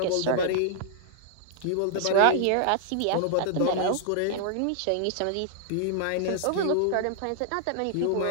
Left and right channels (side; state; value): both; different; correlation -0.01